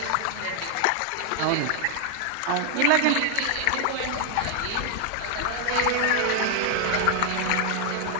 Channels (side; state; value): both; different; correlation 0.00